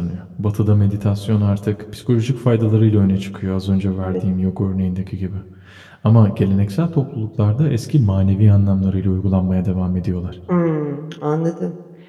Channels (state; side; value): identical; both; correlation 1.00